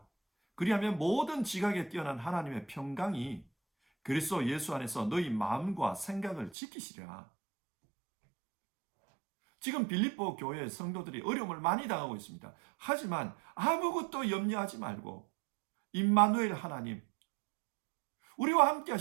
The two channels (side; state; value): left; drops out; at 6.5 s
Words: 그리하면 모든 지각에 뛰어난 하나님의 평강이 그리스도 예수 안에서 너희 마음과 생각을 지키시리라. 지금 빌립보 교회 성도들이 어려움을 많이 당하고 있습니다. 하지만 아무것도 염려하지 말고 임마누엘 하나님, 우리와 함께